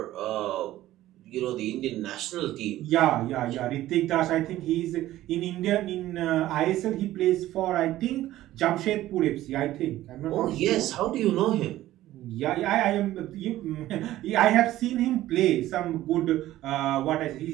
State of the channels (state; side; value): quieter; left; 14.8 dB